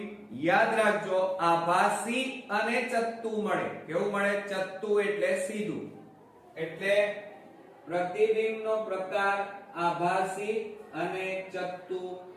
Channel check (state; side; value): identical; both; correlation 1.00